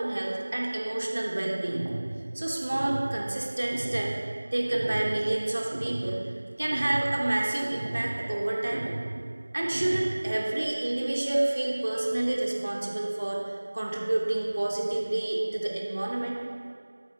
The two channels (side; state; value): both; inverted; correlation -1.00